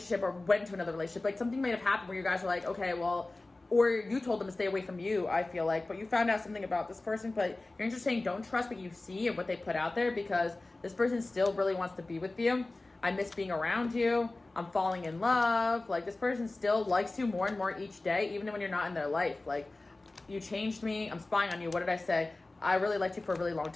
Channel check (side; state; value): right; quieter; 3.0 dB